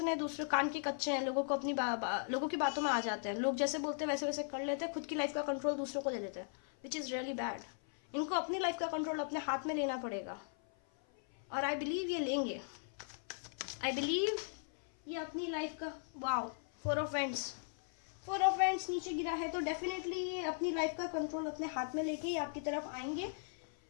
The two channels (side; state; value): right; silent; 52 dB below the other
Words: है, दूसरे कान के कच्चे हैं, लोगों को अपनी लोगों की बातों में आ जाते हैं, लोग जैसे बोलते हैं वैसे वैसे कर लेते हैं, खुद की लाइफ का कंट्रोल दूसरों को दे देते हैं, विच इज़ रियली बैड। इनको अपनी लाइफ का कंट्रोल अपने हाथ में लेना पड़ेगा, और आई बिलीव ये लेंगे। आई बिलीव ये अपनी लाइफ का, वाओ, 4 ऑफ Wands नीचे गिरा है, तो डेफिनेटली ये अपनी लाइफ का कंट्रोल अपने हाथ में लेके ही आपकी तरफ आएंगे